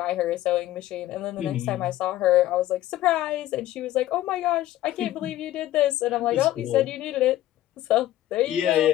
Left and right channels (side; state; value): right; quieter; 14.3 dB